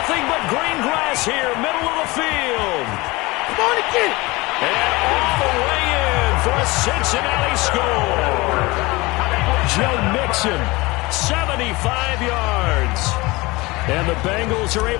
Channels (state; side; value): quieter; right; 22.7 dB